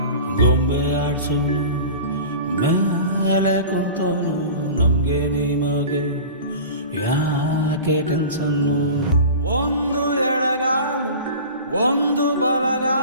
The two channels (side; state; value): both; inverted; correlation -0.36